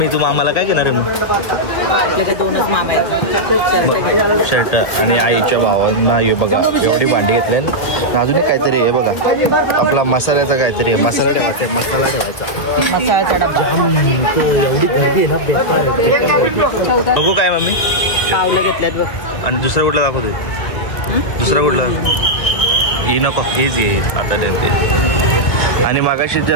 तू मामाला काय घेणार आहे मग? आपले ते दोनच मामा आहेत. शर्ट आणि आईच्या भावांना हे बघा एवढी भांडी घेतली. आणि अजून एक काहीतरी आहे बघा आपला मसाल्याचा काहीतरी आहे. मसाला ठेवायचा मसाला ठेवायचा. मसाल्याचा डब्बा. एवढी गर्दी आहे ना बेकार आहे. बघू काय मम्मी पावलं घेतल्यात बघ. आणि दुसरं कुठलं दाखवते? दुसरं कुठलं? ही नको हीच घे आता देते. आणि मागाशी त्या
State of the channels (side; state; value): right; late; 1.6 ms